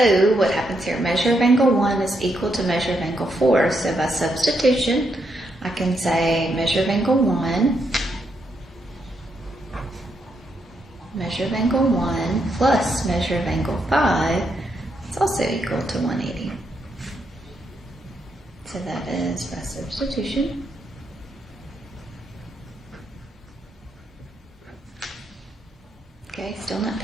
what happens here? Measure of angle 1 is equal to measure of angle 4. So by substitution, I can say measure of angle 1, measure of angle 1 plus measure of angle 5 is also equal to 180. So that is by substitution. Okay, still not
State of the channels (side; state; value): both; normal; correlation 0.79